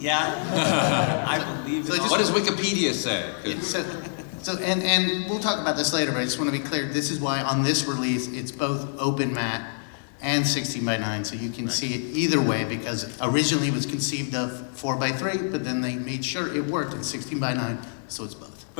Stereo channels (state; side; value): silent; right; digital silence